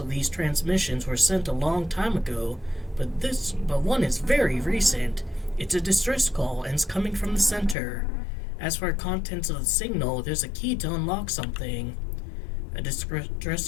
these transmissions were sent a long time ago, but one is very recent. It's a distress call and it's coming from the center. As for contents of the signal, there's a key to unlock something. A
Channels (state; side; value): drops out; right; at 7.8 s